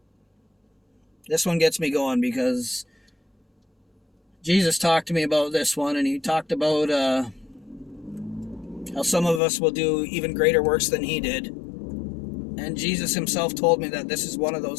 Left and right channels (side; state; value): right; drops out; at 9.4 s